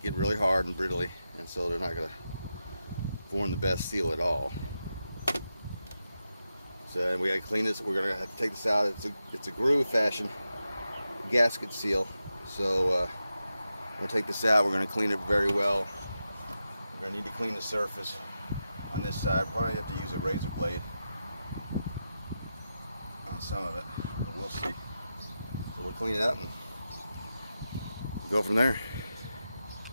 get really hard and brittly, and so they're not going to form the best seal at all. So we got to clean this. We're going to have to take this out. It's a groove fashion gasket seal, so we'll take this out. We're going to clean it very well. We're going to need to clean the surface on this side. Probably have to use a razor blade on some of it, but we'll see. So we'll clean it up and go from there.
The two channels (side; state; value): both; inverted; correlation -0.89